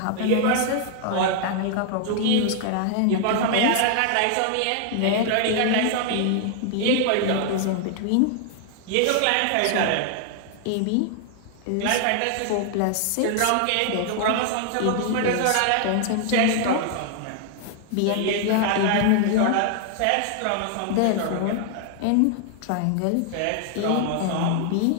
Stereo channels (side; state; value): both; different; correlation 0.00